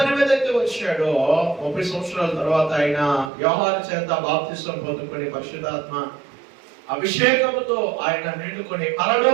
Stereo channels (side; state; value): left; drops out; at 3.3 s